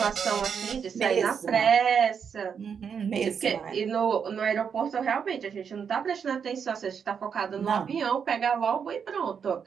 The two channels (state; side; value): quieter; left; 6.9 dB